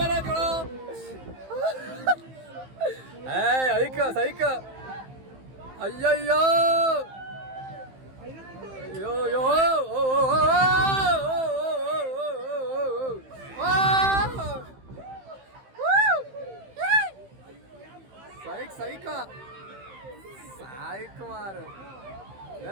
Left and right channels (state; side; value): late; left; 15 ms